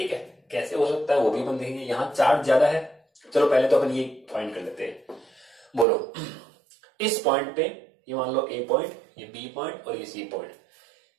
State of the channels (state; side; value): drops out; left; at 5.9 s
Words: है, कैसे हो सकता है वो भी अपन देखेंगे। यहां चार्ज ज्यादा है, चलो पहले तो अपन ये फाइंड कर लेते हैं, बोलो इस पॉइंट पे ये मान लो A पॉइंट, ये B पॉइंट और ये C पॉइंट,